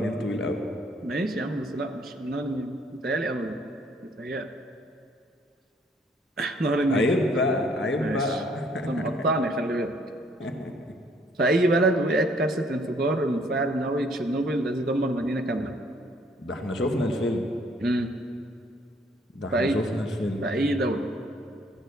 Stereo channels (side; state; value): both; normal; correlation 0.63